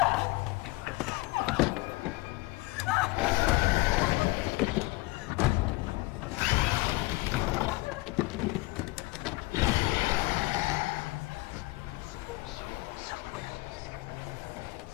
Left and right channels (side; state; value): right; quieter; 22.1 dB